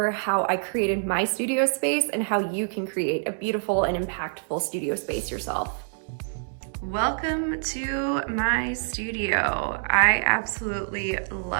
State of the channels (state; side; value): silent; left; digital silence